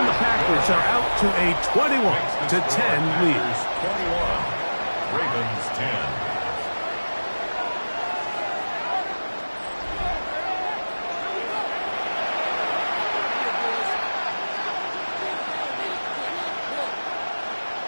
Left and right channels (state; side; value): inverted; both; correlation -1.00